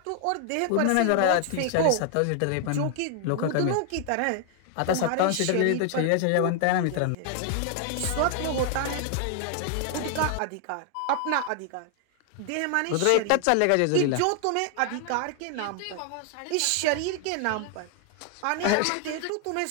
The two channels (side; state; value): both; different; correlation 0.00